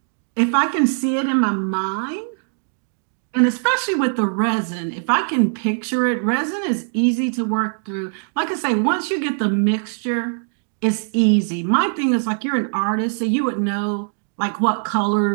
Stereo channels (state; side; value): silent; left; 56 dB below the other